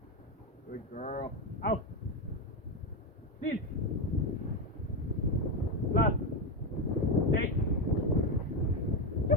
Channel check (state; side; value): normal; both; correlation 0.11